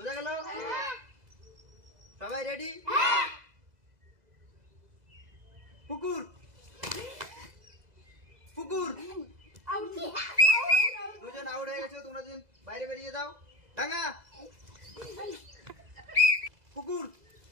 গেল? সবাই রেডি? পুকুর পুকুর। দুজন আউট হয়ে গেছে, তোমরা দুজন বাইরে বেরিয়ে যাও। ডাঙা পুকুর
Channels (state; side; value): late; left; 2.0 ms